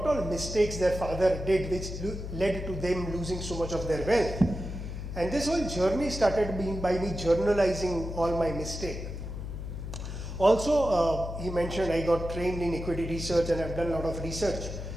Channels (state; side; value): noise; left; hum, 7 dB below the sound